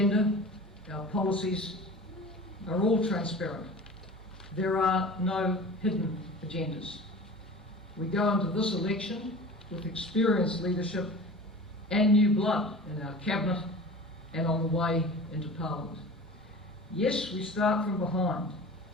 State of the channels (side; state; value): both; normal; correlation 0.38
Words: our policies are all transparent. There are no hidden agendas. We go into this election with experienced leadership and new blood in our cabinet and on the way into Parliament. Yes, we start from behind,